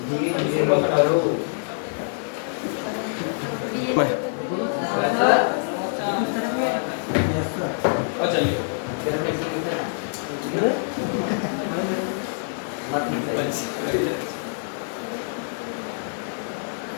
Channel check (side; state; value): right; silent; digital silence